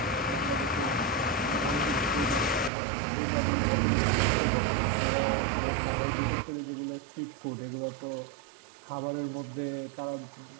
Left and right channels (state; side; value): drops out; left; at 2.7 s